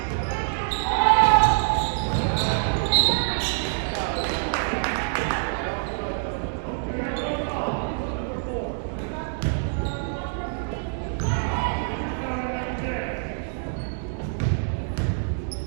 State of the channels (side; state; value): left; silent; digital silence